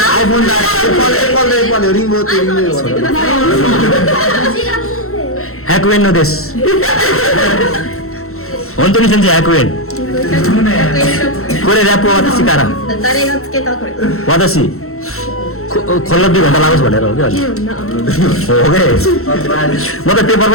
iPhone だAppleリモートリモート100円のです本当に先生100円これラップ私から誰がつけたこれ私컬러비 भन्दा लाग्छ भनेर हो कि अहिले हो के म त पेपर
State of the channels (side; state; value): right; late; 0.63 ms